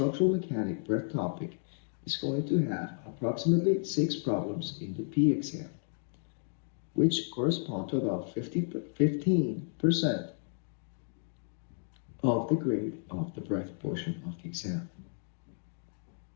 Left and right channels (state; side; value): silent; right; digital silence